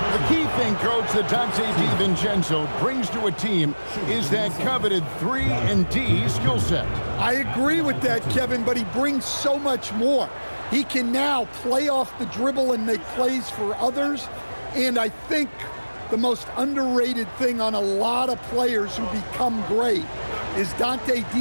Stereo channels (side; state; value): both; inverted; correlation -1.00